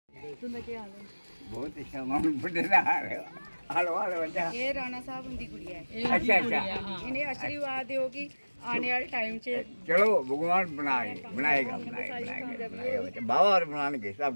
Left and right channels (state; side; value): inverted; both; correlation -1.00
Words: बहुत सामान बड़े रहा हालो हालो बच्चा। ये राणा साहब उनकी गुड़िया है। अच्छा अच्छा इन्हें आशीर्वाद होगी आने वाले टाइम से। चलो भगवान बनाएगा बनाएगा बच्चा। बाबा और बनाने